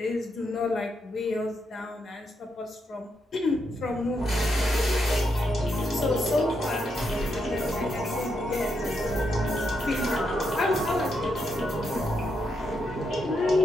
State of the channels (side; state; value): both; normal; correlation 0.81